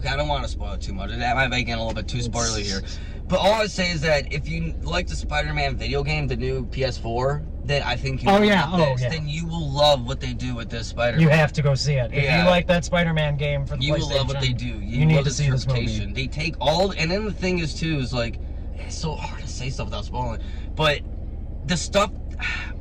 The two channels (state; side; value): identical; both; correlation 1.00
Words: I don't want to spoil it too much. That might make it a little bit too spoilery here. But all I say is that if you like the Spider-Man video game, the new PS4, then I think you will love this. Then you will love what they do with this Spider-Man. You have to go see it. If you like that Spider-Man game for the PlayStation, you will love what they do. You need to see this movie. They take all, and then the thing is too is like it's so hard to say stuff without spoiling. But the stuff,